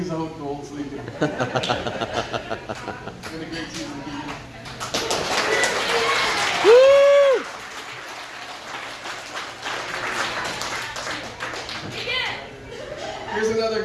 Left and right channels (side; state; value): both; identical; correlation 1.00